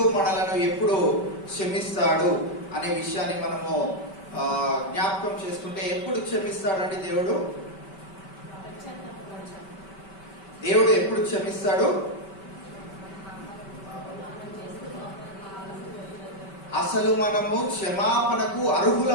మనలను ఎప్పుడు క్షమిస్తాడు అనే విషయాన్ని మనము జ్ఞాపకం చేసుకుంటే, ఎప్పుడు క్షమిస్తాడండి దేవుడు? దేవుడు ఎప్పుడు క్షమిస్తాడు? అసలు మనము క్షమాపణకు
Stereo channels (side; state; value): right; late; 5.2 ms